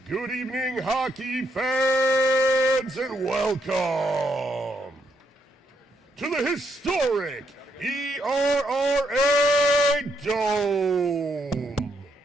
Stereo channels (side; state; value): both; normal; correlation 0.77